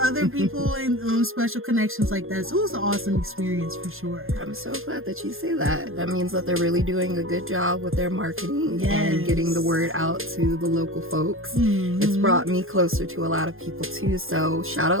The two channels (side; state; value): left; late; 0.60 ms